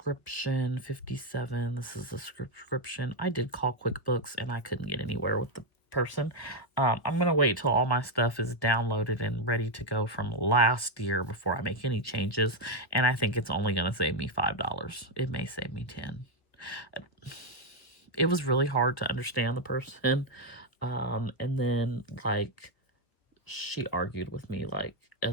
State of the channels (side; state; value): right; late; 1.4 ms